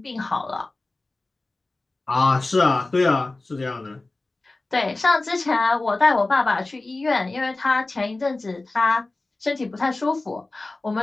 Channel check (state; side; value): quieter; right; 3.1 dB